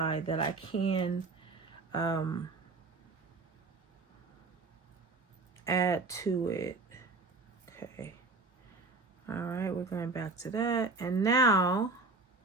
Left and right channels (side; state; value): left; quieter; 3.6 dB